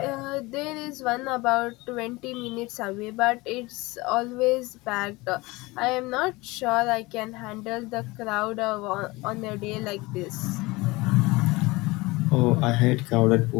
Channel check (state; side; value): quieter; right; 22.4 dB